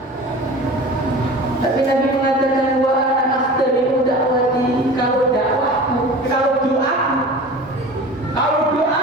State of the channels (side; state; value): both; normal; correlation 0.37